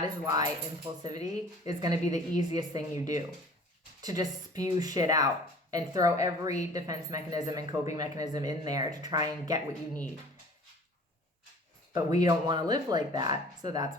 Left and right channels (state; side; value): normal; both; correlation 0.47